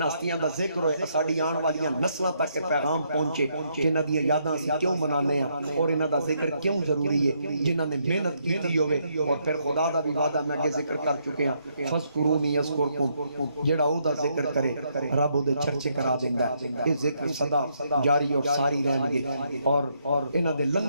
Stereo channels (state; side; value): inverted; both; correlation -0.75